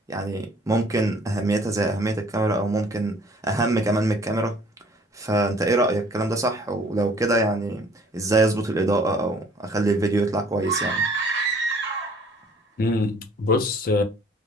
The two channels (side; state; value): both; normal; correlation 0.56